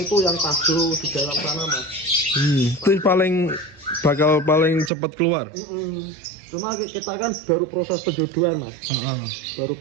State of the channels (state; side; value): drops out; left; at 4.9 s